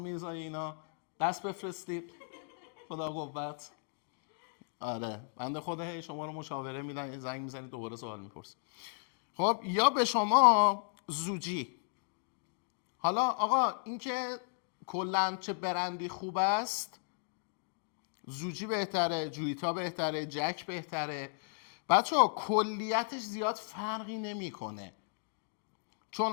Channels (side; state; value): right; silent; 54 dB below the other